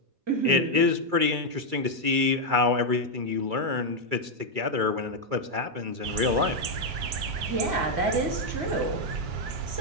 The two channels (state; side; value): late; left; 2.3 ms